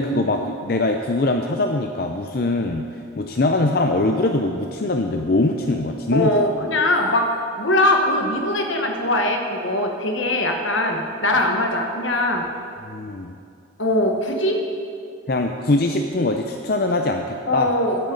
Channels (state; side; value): normal; both; correlation 0.16